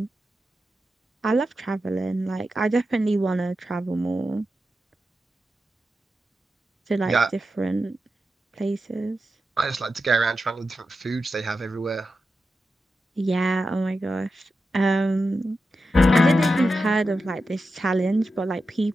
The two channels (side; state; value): both; normal; correlation 0.90